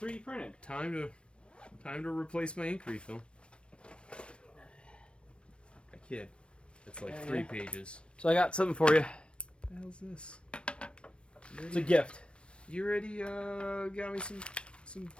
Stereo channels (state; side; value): late; right; 0.058 ms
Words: printed. time to replace my ink refill. I kid. It's like 3 pages. So I got something for you. What the hell's this? It's a gift. You already got me some